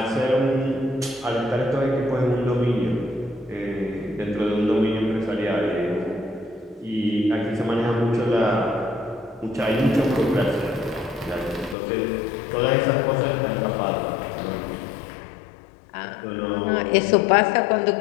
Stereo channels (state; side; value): drops out; right; at 11.8 s